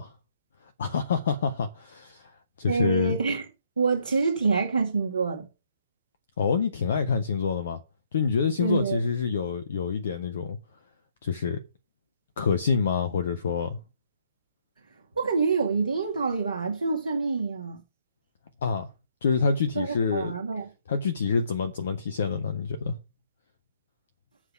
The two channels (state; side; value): inverted; both; correlation -0.68